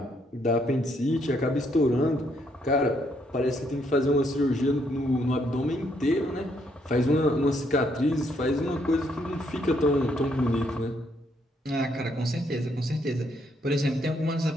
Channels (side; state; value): both; normal; correlation 0.72